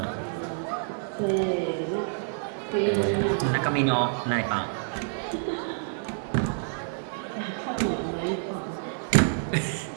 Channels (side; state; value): left; silent; digital silence